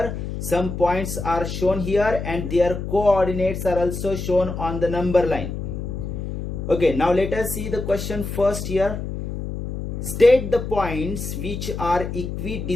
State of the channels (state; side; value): noise; left; hum, 6 dB below the sound